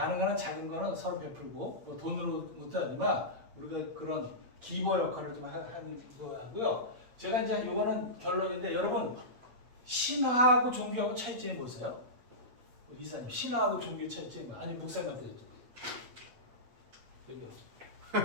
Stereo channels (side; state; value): left; late; 8.4 ms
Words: 한 작은 거는 서로 베풀고 뭐 돈으로 못도 하지만 우리가 그런 기버 역할을 좀 하는 거 하고요. 제가 이제 이거는 결론인데 여러분 신화하고 종교하고 차이점이 뭐세요? 이사님 신화하고 종교의 차이점이 뭐? 아니 목사님한테 여쭤볼게요.